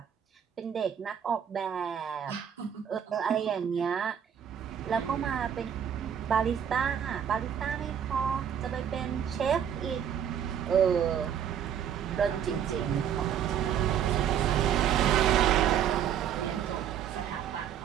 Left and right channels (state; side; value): quieter; left; 8.9 dB